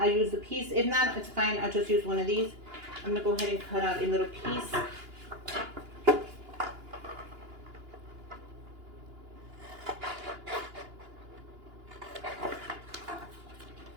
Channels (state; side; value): late; left; 2.9 ms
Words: use the piece. If not, it's fine. I'll just use one of these. I'm gonna go ahead and cut out a little piece.